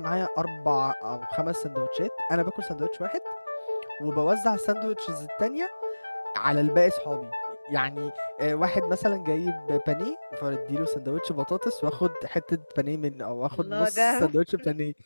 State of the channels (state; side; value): inverted; both; correlation -1.00